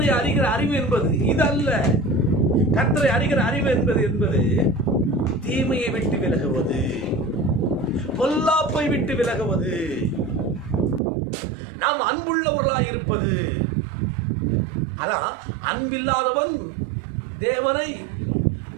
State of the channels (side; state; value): left; drops out; at 11.0 s